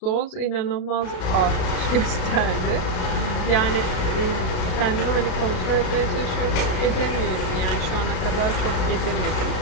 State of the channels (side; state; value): right; late; 33 ms